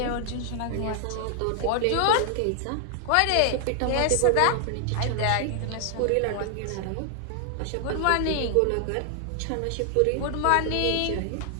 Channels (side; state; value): both; different; correlation 0.00